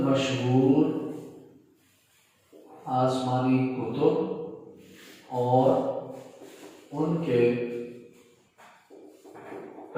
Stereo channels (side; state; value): both; identical; correlation 1.00